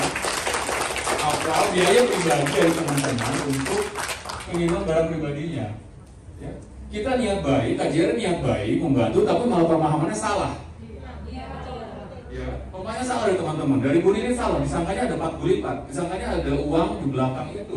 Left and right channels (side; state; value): both; identical; correlation 1.00